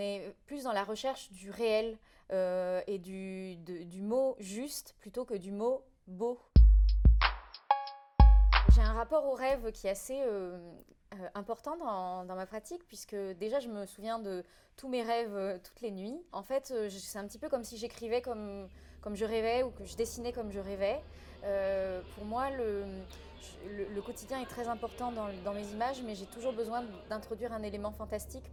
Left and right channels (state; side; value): identical; both; correlation 1.00